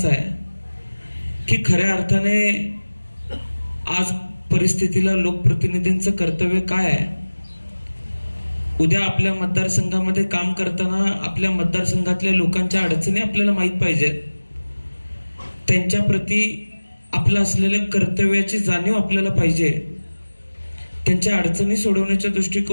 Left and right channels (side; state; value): both; inverted; correlation -1.00